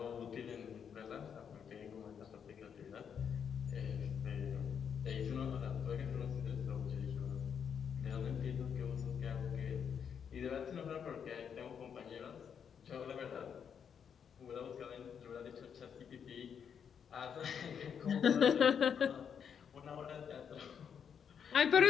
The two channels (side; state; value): right; quieter; 7.5 dB